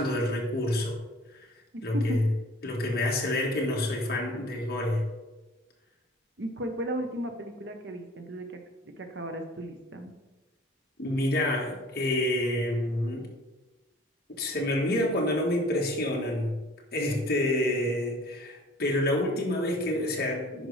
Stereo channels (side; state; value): both; normal; correlation 0.49